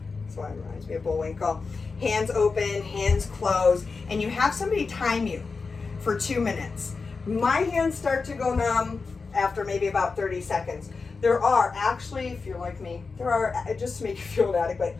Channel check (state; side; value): quieter; right; 4.5 dB